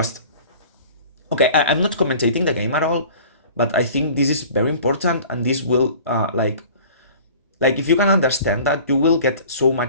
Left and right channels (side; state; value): both; inverted; correlation -0.45